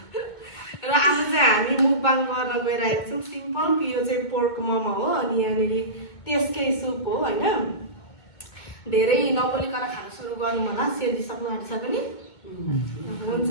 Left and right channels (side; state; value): right; late; 2.2 ms